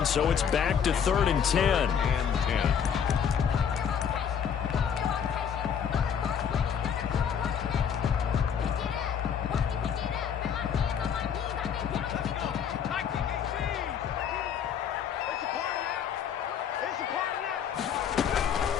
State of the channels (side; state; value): right; quieter; 7.8 dB